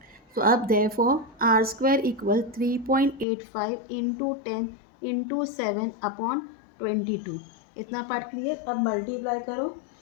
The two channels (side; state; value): right; drops out; at 3.2 s